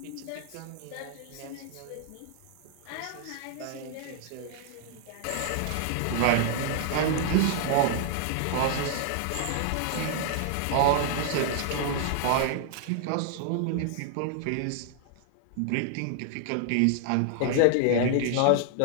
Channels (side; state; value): both; different; correlation 0.00